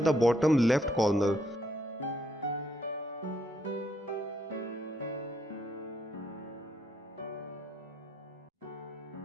bottom left corner.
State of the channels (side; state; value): both; normal; correlation 0.73